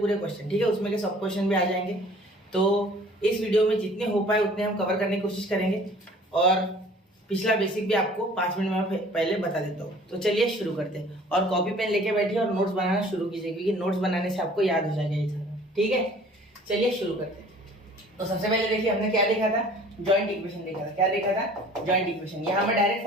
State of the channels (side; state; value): both; normal; correlation 0.51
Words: ठीक है। उसमें के सब क्वेश्चन भी आ जाएंगे। तो इस वीडियो में जितने हो पाए उतने हम कवर करने की कोशिश करेंगे और पिछला बेसिक भी आपको 5 मिनट में पहले बता देता हूँ। तो चलिए शुरू करते हैं और कॉपी पेन लेके बैठिए और नोट्स बनाना शुरू कीजिए, क्योंकि नोट्स बनाने से आपको याद हो जाएगा ये सारा, ठीक है। चलिए शुरू करते हैं। तो सबसे पहले देखिए हमने क्या देखा था, जॉइंट इक्वेशन देखा था। क्या देखा था? Joint equation. यहाँ मैं डायरेक्ट